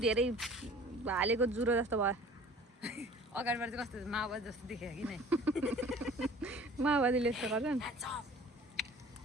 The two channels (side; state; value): both; normal; correlation 0.48